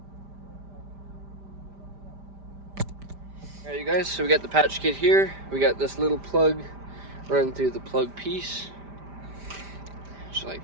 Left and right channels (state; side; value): late; left; 5.0 ms